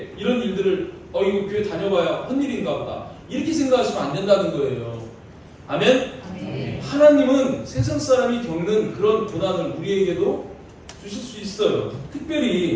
이런 일들을 이거 교회 다녀봐야 헛일인가 보다 이렇게 생각하시면 안 된다는 거예요. 아멘? 아멘. 하나님은 세상 사람이 겪는 그런 고난을 우리에게도 주실 수 있어요.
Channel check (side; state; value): both; identical; correlation 1.00